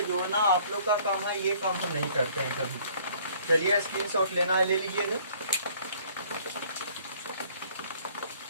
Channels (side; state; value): both; inverted; correlation -0.57